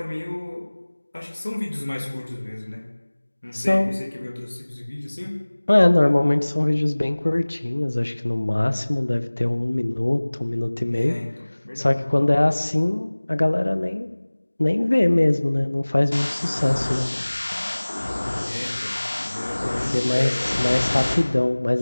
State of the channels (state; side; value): inverted; both; correlation -1.00